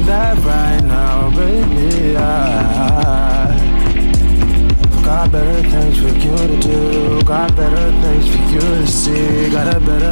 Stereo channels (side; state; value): both; inverted; correlation -1.00